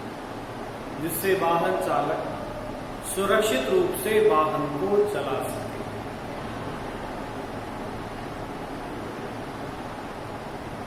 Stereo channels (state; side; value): identical; both; correlation 1.00